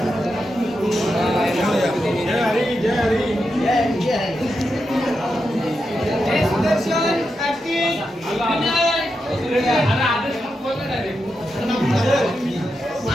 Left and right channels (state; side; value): normal; both; correlation 0.87